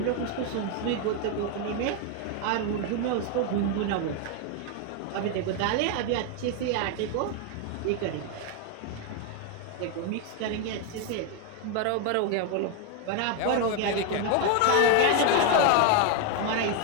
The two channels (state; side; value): different; both; correlation 0.01